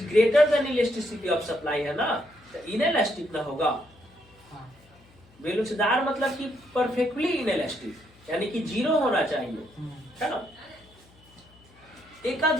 greater then electricity of supply है ना, तो इनइलास्टिक ना होगा। हाँ। बेलोचदार मतलब कि परफेक्टली इनइलास्टिक, यानी कि 0 होना चाहिए, है ना।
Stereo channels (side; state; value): left; noise; hum, 28 dB below the sound